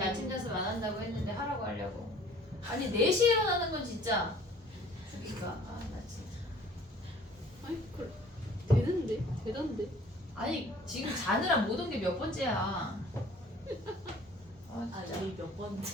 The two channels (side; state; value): both; normal; correlation 0.52